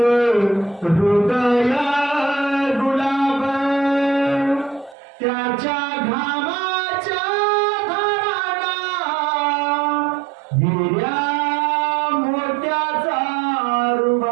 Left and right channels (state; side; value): drops out; left; at 5.0 s